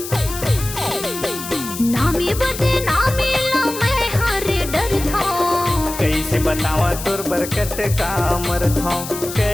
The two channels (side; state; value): left; noise; hiss, 9 dB below the sound